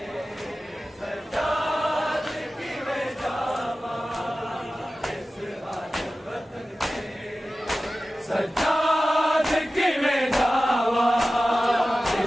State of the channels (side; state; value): both; normal; correlation 0.95